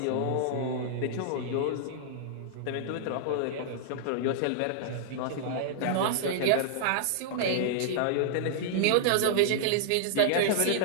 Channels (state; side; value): different; both; correlation -0.01